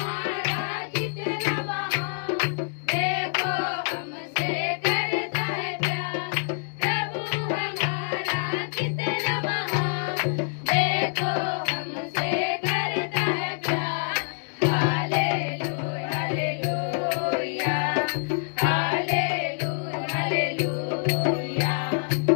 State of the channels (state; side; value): silent; right; 61 dB below the other